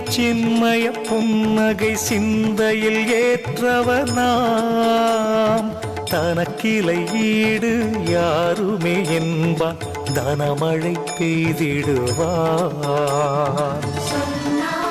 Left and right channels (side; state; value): both; identical; correlation 1.00